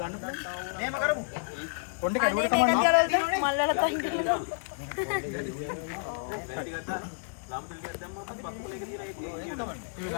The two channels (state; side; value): silent; right; 58 dB below the other